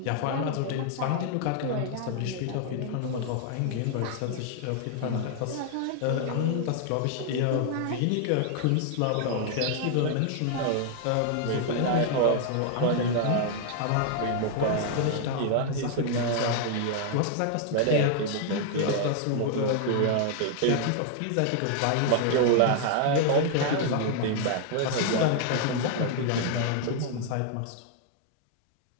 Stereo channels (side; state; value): both; different; correlation 0.00